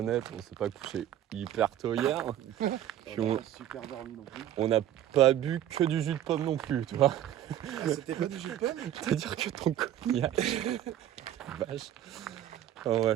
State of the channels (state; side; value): quieter; left; 11.6 dB